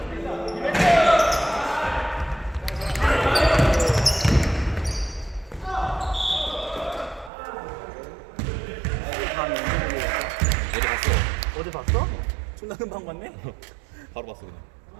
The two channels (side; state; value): left; drops out; at 7.3 s